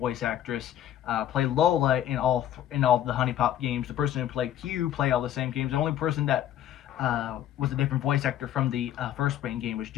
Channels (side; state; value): right; quieter; 11.3 dB